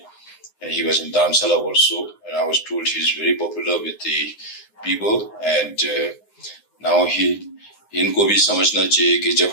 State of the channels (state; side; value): late; right; 9.7 ms